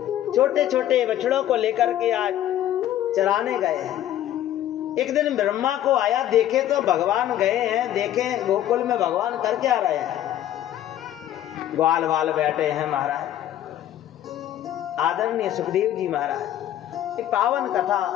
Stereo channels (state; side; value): quieter; right; 12.1 dB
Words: छोटे छोटे बछड़ों को लेकर के आज चराने गए हैं। एक दिन ब्रह्मा को आया, देखे तो भगवान गए हैं, देखे गोकुल में भगवान करके आ रहे हैं। ग्वाल वाल बैठे हैं महाराज, आदरणीय सुखदेव जी महाराज ये पावन कथा